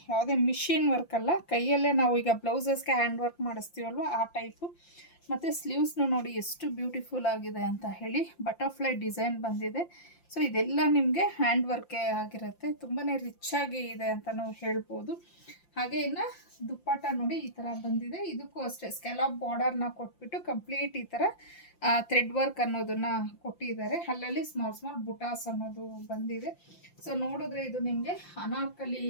ಯಾವುದೇ ಮಿಷಿನ್ ವರ್ಕ್ ಅಲ್ಲ. ಕೈಯಲ್ಲೇ ನಾವು ಈಗ ಬ್ಲೌಸಸ್ಗೆ ಹ್ಯಾಂಡ್ ವರ್ಕ್ ಮಾಡಿಸ್ತೀವಲ್ವ ಆ ಟೈಪು. ಮತ್ತು ಸ್ಲೀವ್ಸ್ನು ನೋಡಿ ಎಷ್ಟು ಬ್ಯೂಟಿಫುಲ್ ಆಗಿದೆ ಅಂತ ಹೇಳಿ. ಬಟರ್ಫ್ಲೈ ಡಿಸೈನ್ ಬಂದಿದೆ. ಸೊ ಇದೆಲ್ಲ ನಿಮಗೆ ಹ್ಯಾಂಡ್ ವರ್ಕೇ ಆಗಿರುತ್ತೆ. ತುಂಬಾ ರಿಚ್ ಆಗಿ ಇದೆ ಅಂತ ನಾವು ಹೇಳ್ಬೋದು. ಹಾಗೆ ಇನ್ನು ದುಪ್ಪಟ್ಟ ನೋಡಿ ಈ ಥರ ಬಂದಿದೆ. ಇದಕ್ಕೂ ಅಷ್ಟೇ ಸ್ಕ್ಯಾಲಪ್ ಬಾರ್ಡರ್ನ ಕೊಟ್ಬಿಟ್ಟು ಕಂಪ್ಲೀಟ್ ಈ ಥರ ಥ್ರೆಡ್ ವರ್ಕ್ ಅನ್ನೋದನ್ನ ಕೊಟ್ಟಿದ್ದಾರೆ. ಅಲ್ಲಲ್ಲಿ ಸ್ಮಾಲ್ ಸ್ಮಾಲ್ ಬುಟಾಸ್ ಅನ್ನೋದು ಬಂದಿದೆ. ಸೊ ನೋಡಿದ್ರೆ ಇದು ನಿಮಗೆ ಅನಾರ್ಕಲಿ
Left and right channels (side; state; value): right; late; 5.8 ms